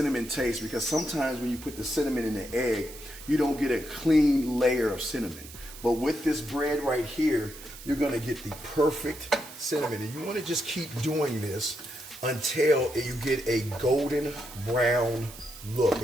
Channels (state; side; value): noise; right; hiss, 16 dB below the sound